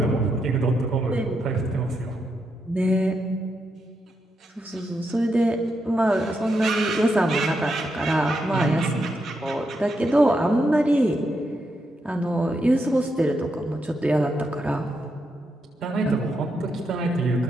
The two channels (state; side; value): normal; both; correlation 0.82